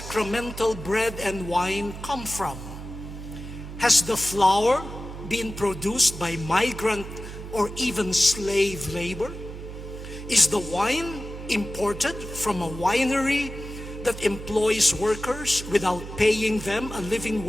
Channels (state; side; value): noise; right; hum, 10 dB below the sound